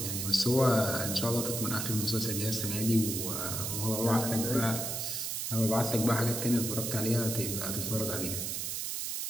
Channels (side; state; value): right; noise; hiss, 2 dB below the sound